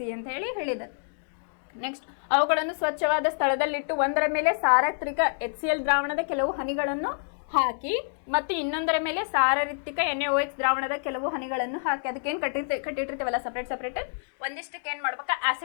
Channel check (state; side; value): silent; right; digital silence